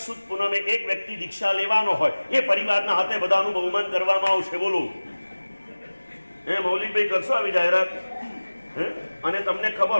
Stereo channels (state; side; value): inverted; both; correlation -1.00